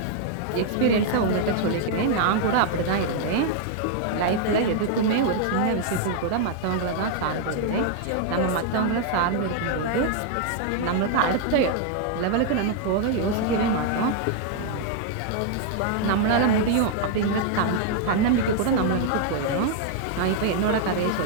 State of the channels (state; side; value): different; both; correlation 0.00